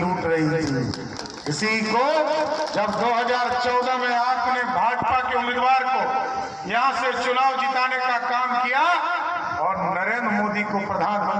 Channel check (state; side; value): identical; both; correlation 1.00